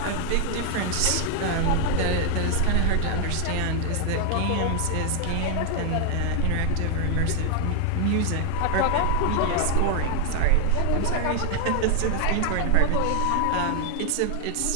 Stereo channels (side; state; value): both; different; correlation 0.00